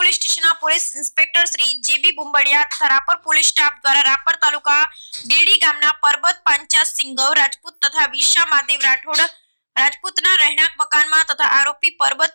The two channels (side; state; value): both; inverted; correlation -1.00